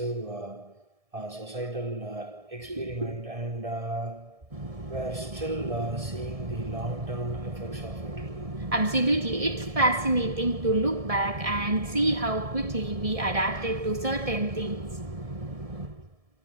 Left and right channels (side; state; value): left; late; 1.7 ms